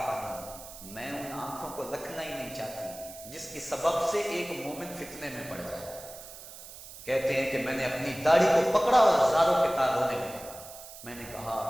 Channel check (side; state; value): right; noise; hiss, 15 dB below the sound